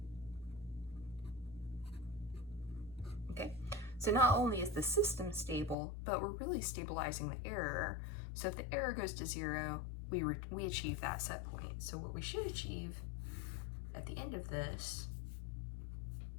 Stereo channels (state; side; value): drops out; right; at 5.8 s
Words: Okay, so not only is the system stable, but we're really stabilizing the error. So if the error goes to 0, we achieve that set point. So what we should achieve at the end of this